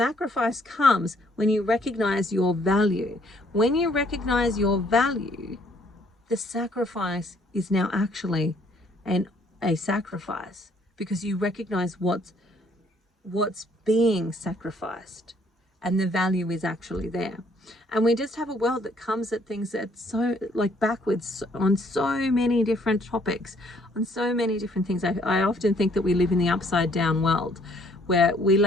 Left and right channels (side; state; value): both; normal; correlation 0.64